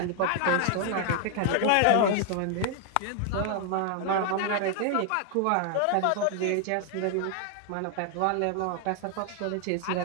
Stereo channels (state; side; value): different; both; correlation 0.00